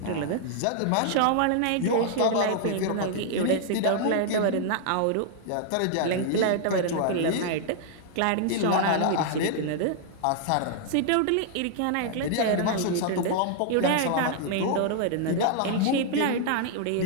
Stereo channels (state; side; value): different; both; correlation -0.01